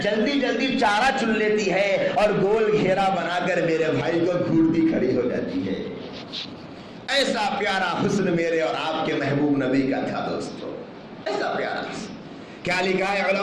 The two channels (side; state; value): both; identical; correlation 1.00